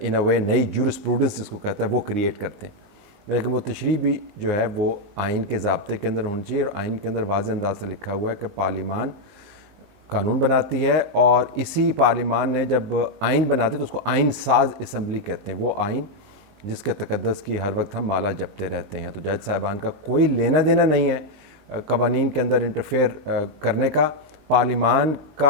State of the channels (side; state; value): left; late; 19 ms